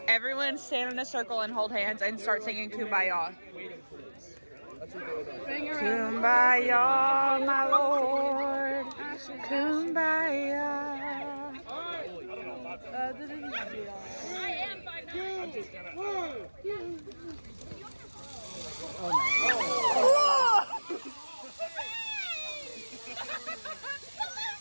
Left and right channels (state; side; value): inverted; both; correlation -1.00